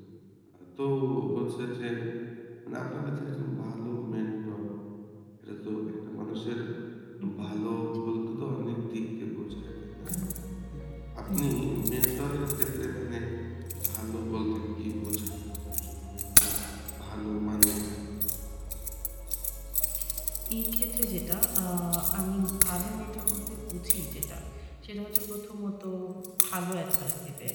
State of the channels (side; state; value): both; identical; correlation 1.00